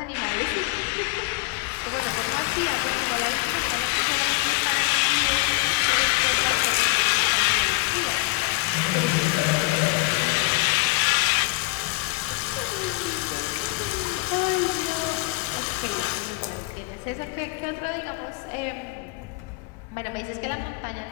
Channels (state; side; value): quieter; right; 23.4 dB